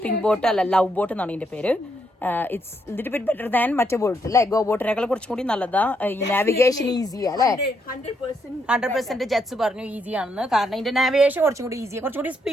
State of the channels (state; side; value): normal; both; correlation 0.76